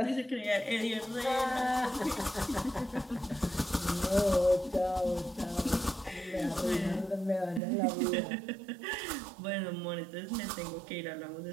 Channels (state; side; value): drops out; left; at 7.6 s